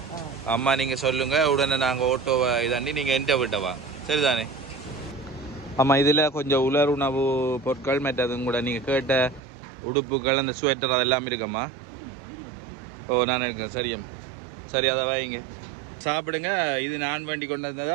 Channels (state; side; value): drops out; left; at 9.4 s